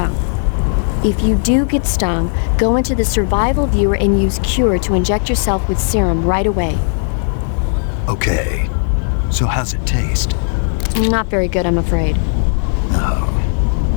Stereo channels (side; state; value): right; silent; digital silence